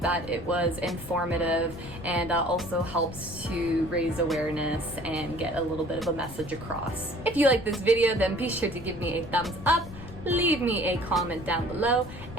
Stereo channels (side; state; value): left; noise; rumble, 14 dB below the sound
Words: that it was informative and also helps to raise awareness and get a little bit of a message across. If you like this video, then be sure to give me a thumbs up, leave me a comment down below,